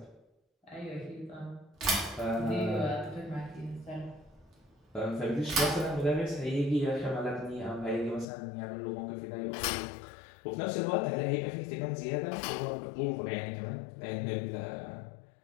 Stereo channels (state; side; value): drops out; right; at 8.2 s